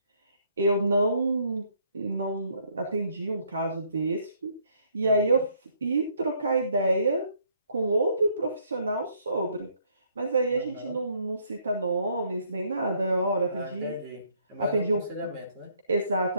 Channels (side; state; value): both; inverted; correlation -0.67